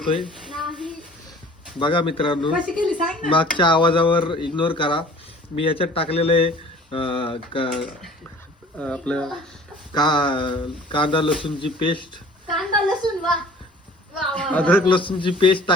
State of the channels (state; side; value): normal; both; correlation 0.48